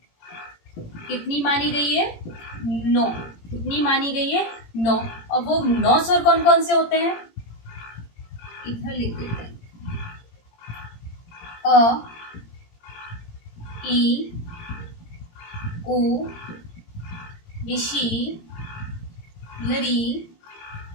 कितनी मानी गई है, 9। कितनी मानी गई है, 9। और वो 9 स्वर कौन कौन से होते हैं, इधर लिख देते हैं। अ, ई, उ, ऋषि, लरी,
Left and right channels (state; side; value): late; right; 18 ms